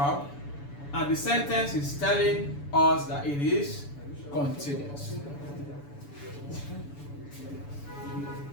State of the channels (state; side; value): late; right; 7.0 ms